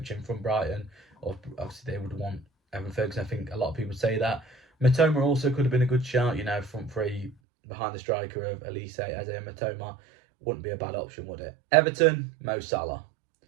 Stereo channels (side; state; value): left; drops out; at 7.4 s